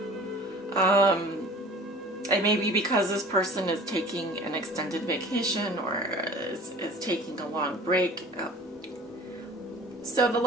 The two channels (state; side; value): normal; both; correlation 0.44